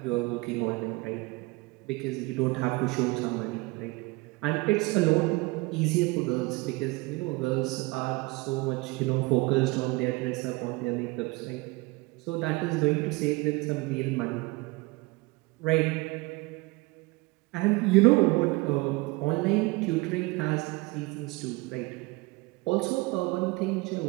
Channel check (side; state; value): left; quieter; 24.0 dB